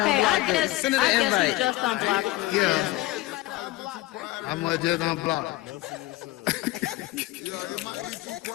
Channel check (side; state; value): right; quieter; 18.0 dB